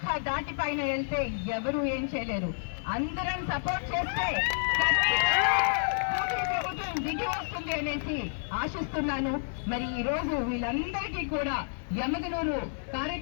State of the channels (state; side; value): silent; right; digital silence